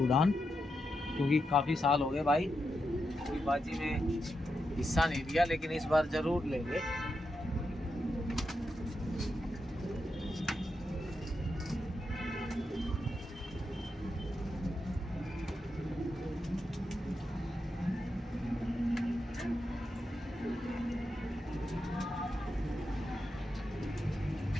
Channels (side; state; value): both; normal; correlation 0.86